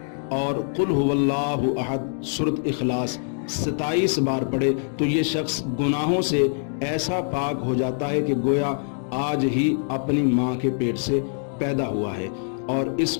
और कुल हुवल्लाहु अहद सूरत इखलास 27 बार पढ़े तो ये शख्स गुनाहों से ऐसा पाक हो जाता है कि गोया आज ही अपनी माँ के पेट से पैदा हुआ है और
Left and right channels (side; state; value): right; silent; digital silence